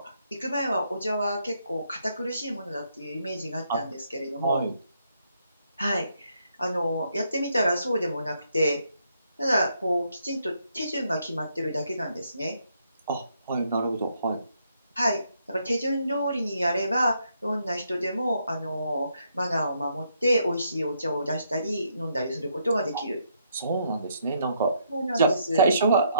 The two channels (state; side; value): inverted; both; correlation -0.74